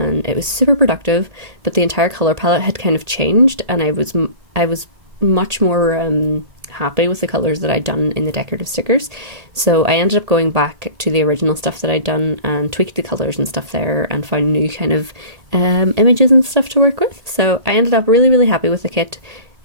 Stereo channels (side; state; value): left; late; 1.8 ms